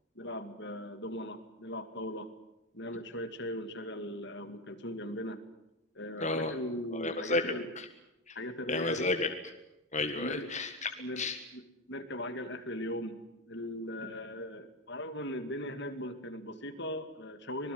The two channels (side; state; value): both; normal; correlation 0.14